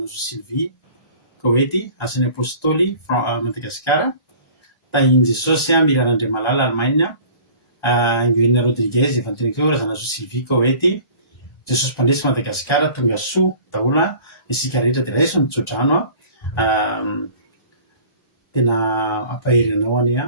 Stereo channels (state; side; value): late; right; 1.3 ms